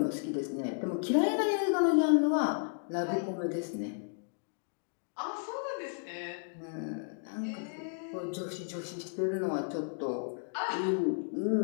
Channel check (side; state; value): right; silent; digital silence